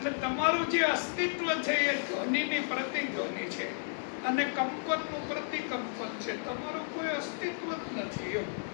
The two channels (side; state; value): right; silent; digital silence